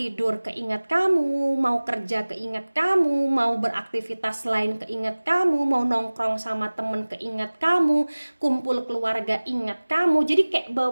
keingat kamu, mau kerja keingat kamu, mau beraktivitas lain keingat kamu, mau nongkrong sama temen keingat kamu, kumpul keluarga ingat kamu. Jadi kayak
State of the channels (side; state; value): both; inverted; correlation -1.00